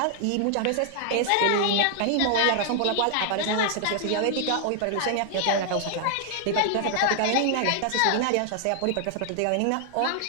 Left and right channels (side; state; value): both; different; correlation 0.00